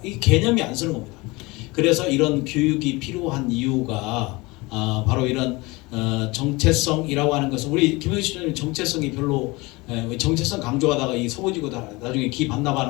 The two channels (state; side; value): quieter; right; 23.7 dB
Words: 이 개념이 안 쓰는 겁니다. 그래서 이런 교육이 필요한 이유가 바로 이런 정체성이라고 하는 것은 우리 김영식 총장님 정체성이 별로 정체성 강조하다가 이 서부지구 나중에 기